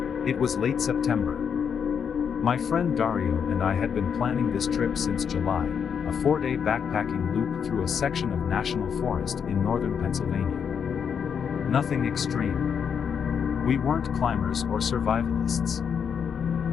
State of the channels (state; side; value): quieter; right; 7.2 dB